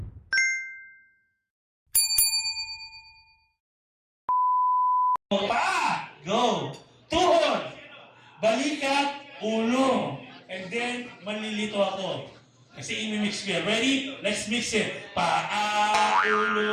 Pa! Go! Tuhod! Balikat, ulo. And then, malilito ako. Kasi imimix ko yan. Ready? Let's mix it. Paa,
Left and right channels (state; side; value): identical; both; correlation 1.00